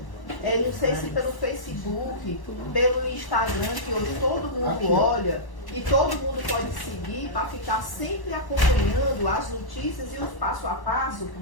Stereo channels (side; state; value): right; late; 1.1 ms